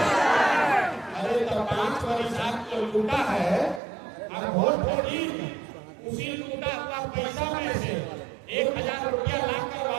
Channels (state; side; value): drops out; left; at 3.8 s